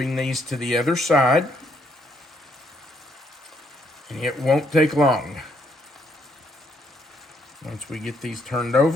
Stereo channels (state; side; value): normal; both; correlation 0.72